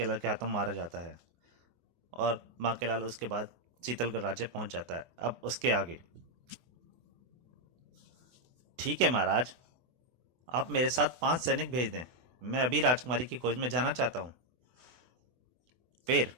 के हाथों मारा जाता है। और बांकेलाल उसके बाद शीतलगढ़ राज्य पहुंच जाता है। अब उसके आगे। ठीक है महाराज, आप मेरे साथ 5 सैनिक भेज दें। मैं अभी राजकुमारी की खोज में जाना चाहता हूँ। फिर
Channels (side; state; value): left; late; 24 ms